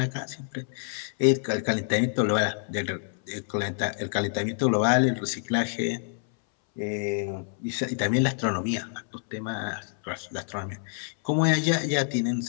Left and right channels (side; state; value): right; silent; 60 dB below the other